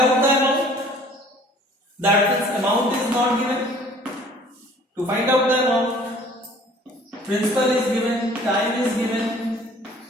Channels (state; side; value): normal; both; correlation 0.52